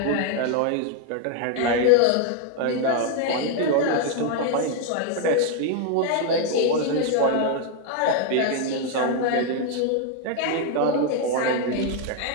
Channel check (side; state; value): both; different; correlation 0.00